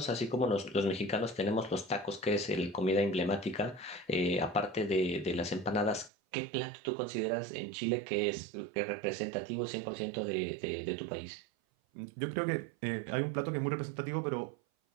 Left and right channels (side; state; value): left; drops out; at 6.1 s